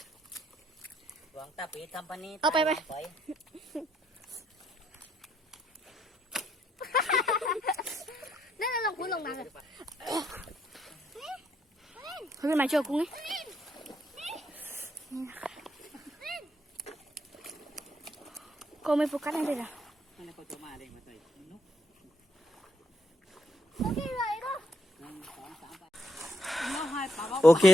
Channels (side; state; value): both; normal; correlation 0.74